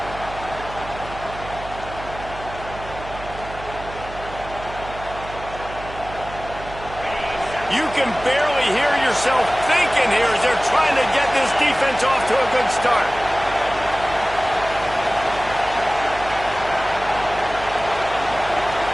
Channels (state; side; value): noise; right; hum, 13 dB below the sound